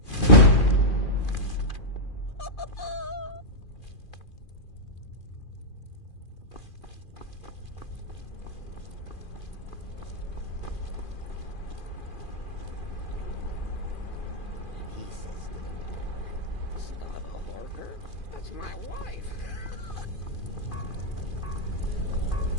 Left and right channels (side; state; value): right; late; 2.4 ms